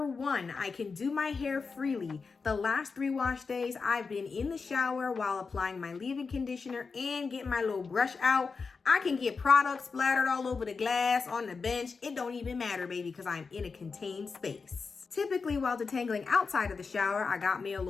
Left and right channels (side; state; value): right; quieter; 4.8 dB